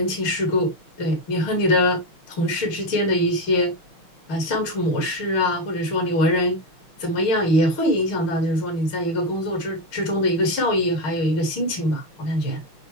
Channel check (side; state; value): right; late; 6.4 ms